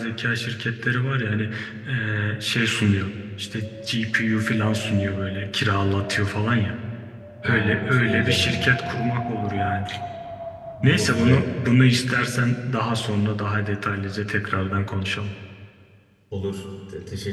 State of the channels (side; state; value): both; identical; correlation 1.00